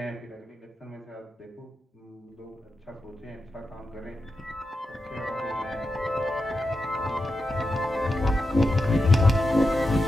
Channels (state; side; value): normal; both; correlation 0.89